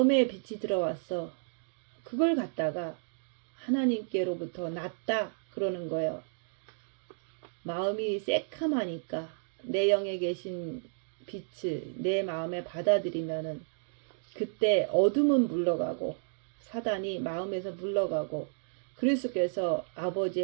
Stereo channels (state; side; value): silent; left; digital silence